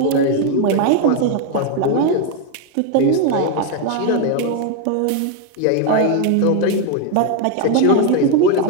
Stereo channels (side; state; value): both; different; correlation 0.01